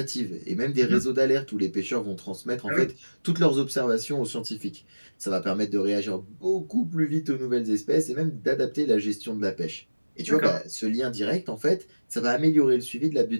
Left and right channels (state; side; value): inverted; both; correlation -1.00